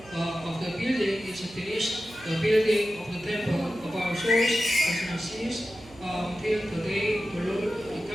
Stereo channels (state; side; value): noise; right; hum, 22 dB below the sound